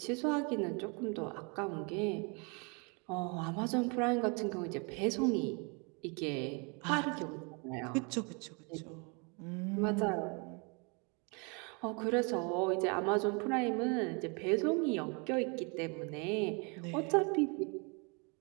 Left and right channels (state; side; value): quieter; left; 33.0 dB